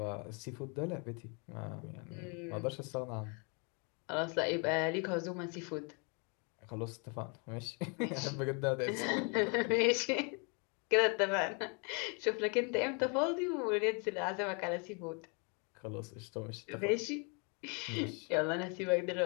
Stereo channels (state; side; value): quieter; right; 35.0 dB